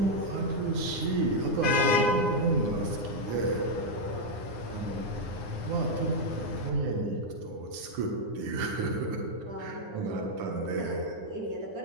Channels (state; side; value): late; left; 9.8 ms